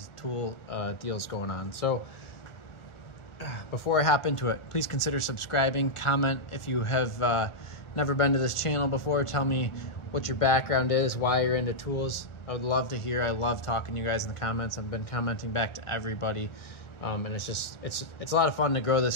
tool deals going on. So before I hop into it, please consider subscribing, comment if you have never been to this channel before. Tell me what your background is, why you're into tools. I would love to hear. I love talking to you guys in the comments. I've been commenting back to everybody. And it's a lot of fun to grow this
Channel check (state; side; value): late; right; 1.4 ms